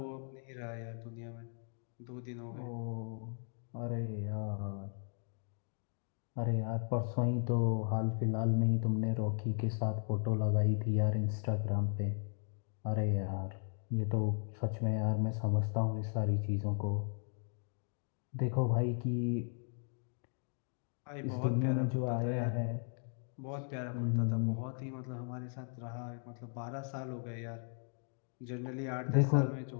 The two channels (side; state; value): right; silent; 53 dB below the other